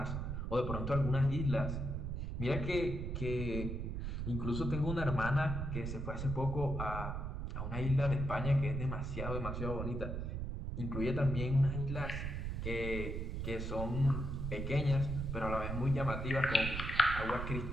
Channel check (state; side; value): noise; right; rumble, 3 dB below the sound